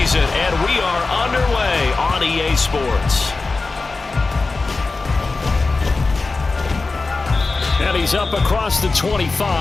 and we are underway on EA Sports. And he's up across the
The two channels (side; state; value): right; quieter; 3.8 dB